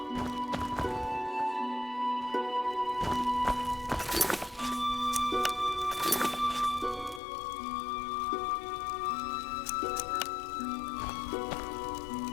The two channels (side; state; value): right; drops out; at 7.2 s